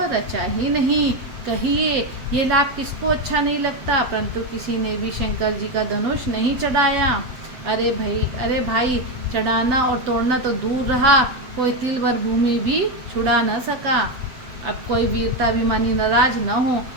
रचा ही नहीं। कहिए ये लाभ किसको अच्छा नहीं लगता, परंतु किसी ने भी शंकर जी का धनुष नहीं चढ़ाया। अरे भाई चढ़ाना और तोड़ना तो दूर रहा, कोई तिल भर भूमि भी छुड़ा न सका। अब कोई वीरता अभिमानी नाराज न हो।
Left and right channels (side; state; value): left; late; 7.8 ms